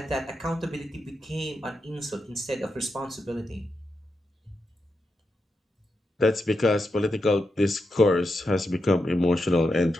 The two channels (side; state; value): both; normal; correlation 0.86